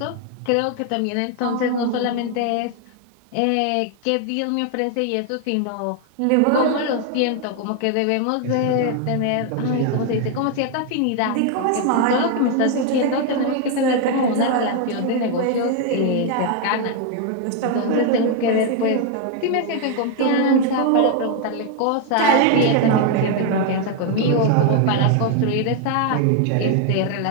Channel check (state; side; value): different; both; correlation 0.01